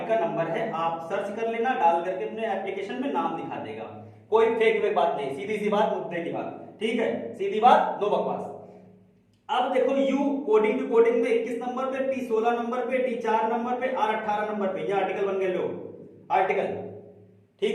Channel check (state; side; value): identical; both; correlation 1.00